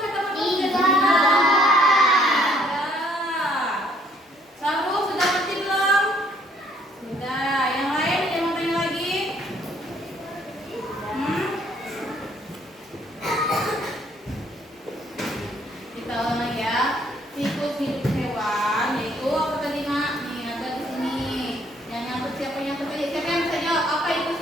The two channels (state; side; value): normal; both; correlation 0.64